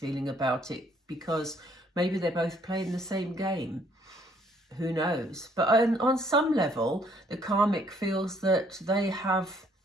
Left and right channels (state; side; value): normal; both; correlation 0.64